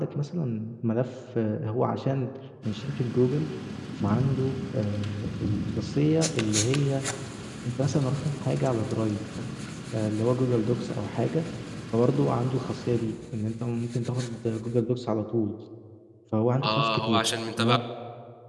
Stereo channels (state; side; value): identical; both; correlation 1.00